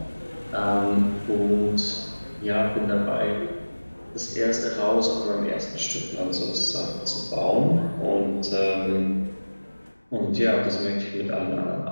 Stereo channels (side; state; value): both; inverted; correlation -1.00